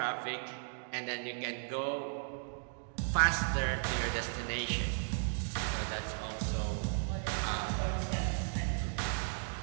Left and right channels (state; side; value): silent; left; digital silence